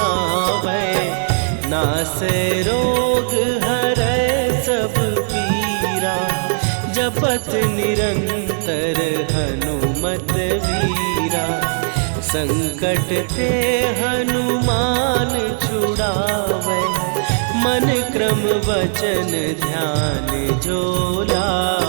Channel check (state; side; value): silent; left; digital silence